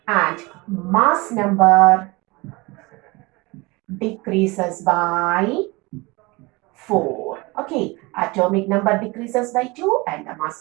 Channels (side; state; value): left; quieter; 24.5 dB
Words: and mass number decreases by 4. Okay, atomic number decreases by 2 and the